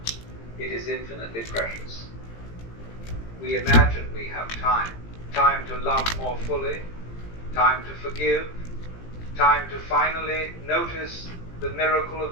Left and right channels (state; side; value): late; right; 18 ms